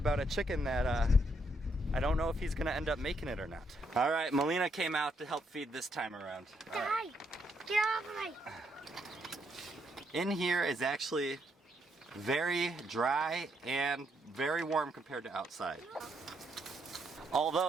a chicken that I don't know if he's gonna end up making it or not. All right, Melina came out to help feed this time around. Right. Get off of me. In here is actually very dry and very warm compared to outside. Although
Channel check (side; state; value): both; normal; correlation 0.75